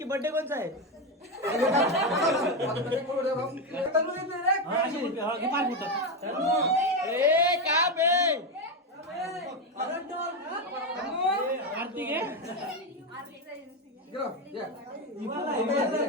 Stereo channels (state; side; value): normal; both; correlation 0.10